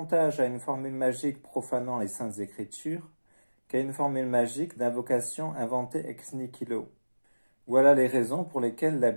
à une formule magique profanant les saintes écritures qu'à une formule magique d'invocation inventée ex nihilo. Voilà les raisons pour lesquelles la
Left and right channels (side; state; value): both; inverted; correlation -1.00